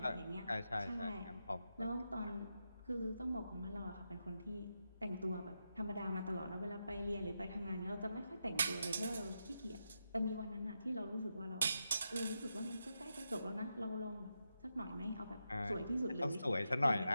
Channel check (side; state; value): both; inverted; correlation -0.86